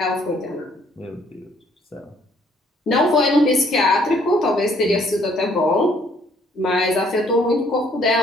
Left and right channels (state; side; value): normal; both; correlation 0.64